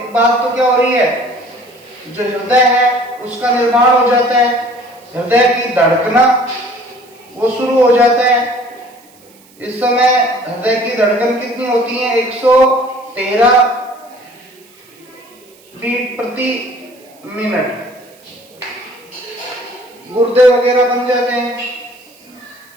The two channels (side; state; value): right; noise; hiss, 28 dB below the sound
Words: बात तो क्या हो रही है, जो हृदय है उसका निर्माण हो जाता है, हृदय की धड़कना वो शुरू हो जाता है। इस समय हृदय की धड़कन कितनी होती है, 113 बीट प्रति मिनट। गुर्दे वगैरह बन जाते हैं,